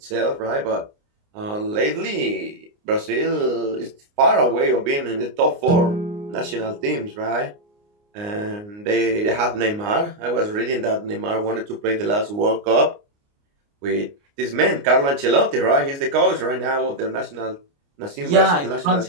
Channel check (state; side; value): late; left; 29 ms